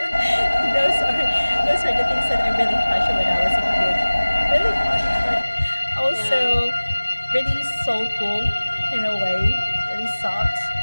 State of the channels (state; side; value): inverted; both; correlation -1.00